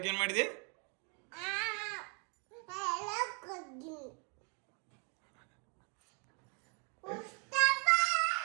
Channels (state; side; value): quieter; left; 36.0 dB